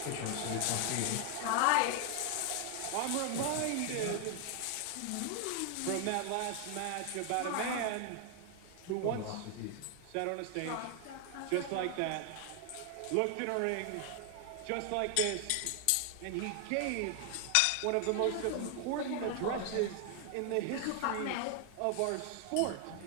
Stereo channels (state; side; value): different; both; correlation 0.00